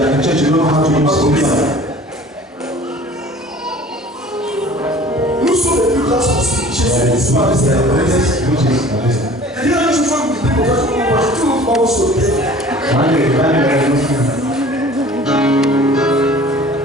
Nous sommes les plus grands sorciers. Jésus n'est pas resté à la maison. Il y a une fois que vous dites, tout le monde va se lever.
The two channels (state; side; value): normal; both; correlation 0.47